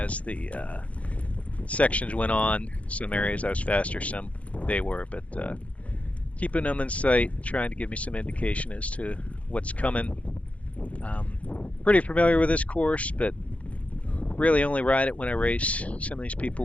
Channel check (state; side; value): late; right; 0.065 ms